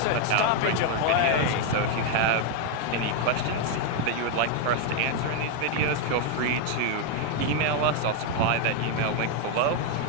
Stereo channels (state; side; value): different; both; correlation 0.01